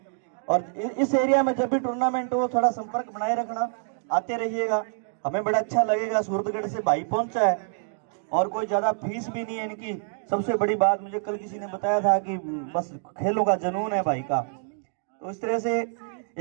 और इस एरिया में जब भी टूर्नामेंट हो थोड़ा संपर्क बनाए रखना, आते रहिएगा, हमें बड़ा अच्छा लगेगा। सूरतगढ़ से भाई पहुंचा है और कोई ज्यादा फीस भी नहीं है इनकी। सबसे बड़ी बात मुझे कल किसी ने बताया था कि बस खेलों का जुनून है भाई का। तो इस तरह से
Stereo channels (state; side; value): silent; left; digital silence